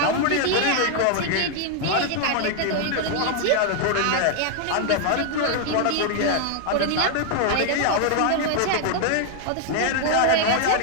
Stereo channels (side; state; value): both; different; correlation 0.00